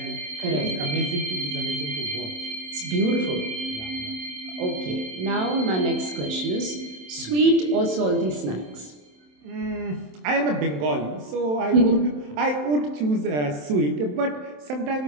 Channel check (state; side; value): late; left; 27 ms